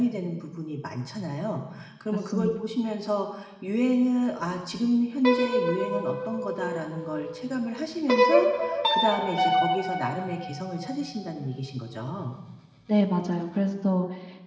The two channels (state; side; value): identical; both; correlation 1.00